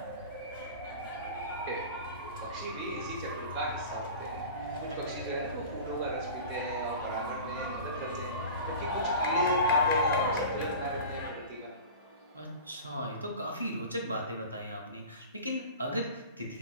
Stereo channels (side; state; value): both; inverted; correlation -0.36